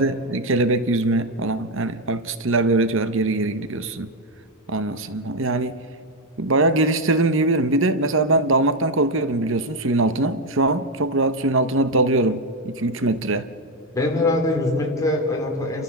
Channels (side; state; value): both; normal; correlation 0.07